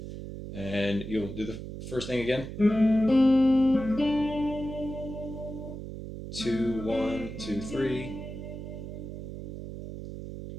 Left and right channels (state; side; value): noise; right; hum, 9 dB below the sound